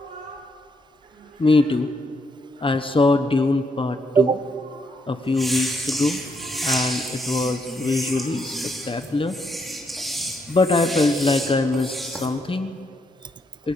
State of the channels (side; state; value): both; normal; correlation 0.76